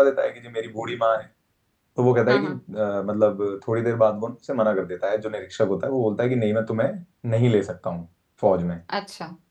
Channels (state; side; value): identical; both; correlation 1.00